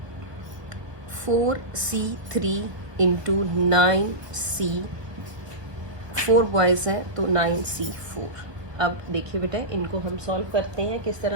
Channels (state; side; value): late; left; 1.4 ms